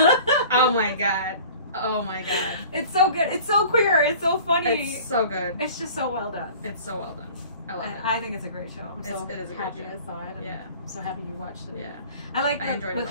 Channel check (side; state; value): both; inverted; correlation -0.44